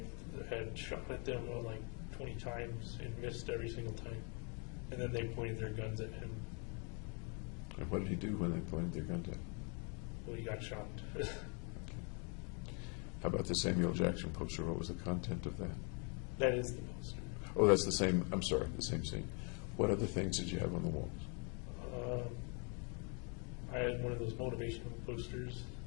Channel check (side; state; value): right; quieter; 36.5 dB